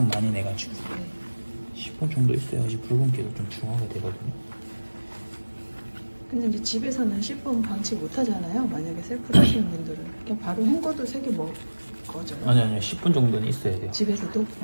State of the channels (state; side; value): inverted; both; correlation -1.00